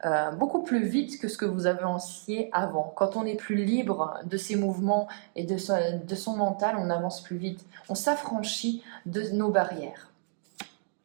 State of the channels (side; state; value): left; silent; digital silence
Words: beaucoup plus vite que ce que vous avanciez avant. Quand on est plus libre de ses mouvements et de son mental, on avance plus vite. On s'affranchit de nos barrières.